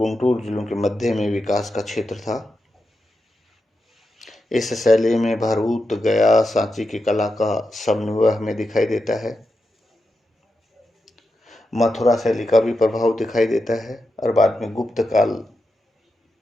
जिलों के मध्य में विकास का क्षेत्र था। इस शैली में भरूच, गया, सांची की कला का समन्वय हमें दिखाई देता है। मथुरा शैली का भी प्रभाव दिखाई देता है और बाद में गुप्त काल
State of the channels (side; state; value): both; normal; correlation 0.88